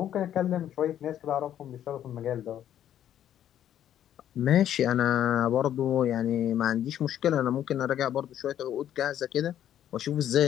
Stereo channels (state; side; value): quieter; right; 10.8 dB